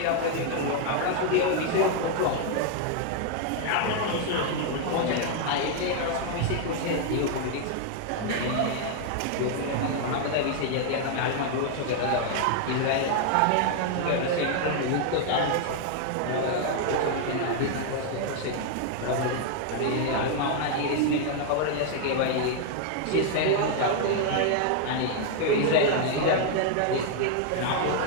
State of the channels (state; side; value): different; both; correlation 0.00